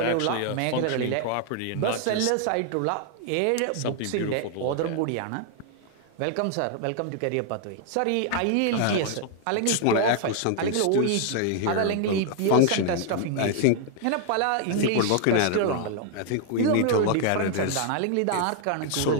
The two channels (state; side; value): different; both; correlation 0.00